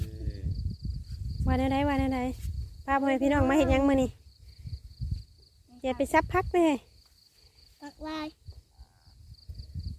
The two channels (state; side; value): identical; both; correlation 1.00